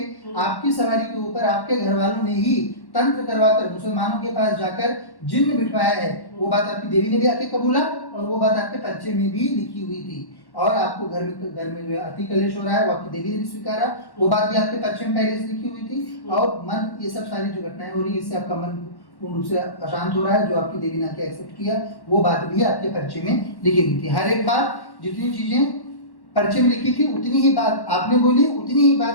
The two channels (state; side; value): late; right; 1.1 ms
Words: आपकी सवारी के ऊपर आपके घर वालों ने ही तंत्र करवाकर मुसलमानों के पास जाकर जिन्न बिठवाया है, वो बात आपकी देवी ने भी आके कबूला, और वो बात आपके परिचय में भी लिखी हुई थी। और आपको घर में जो है अति कलेश हो रहा है, वो आपकी देवी ने भी स्वीकारा, वो बात भी आपके परिचय में पहले से लिखी हुई थी। और मन, ये सब सारी जो घटनाएं हो रही है, इससे आपका मन पूर्ण रूप से अशांत हो रहा है, जो आपकी देवी ने आके एक्सेप्ट किया, वो बात भी आपके परिचय में लिखी हुई थी। हर एक बात, जितनी चीजें परिचय में लिखी थी, उतनी ही बात आपने बोली, उतनी ही बात